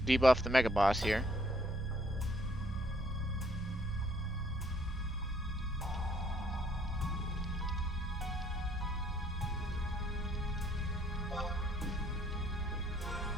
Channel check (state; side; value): normal; both; correlation 0.66